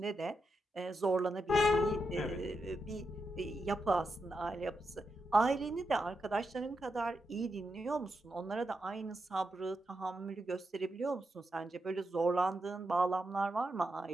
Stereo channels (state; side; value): normal; both; correlation 0.86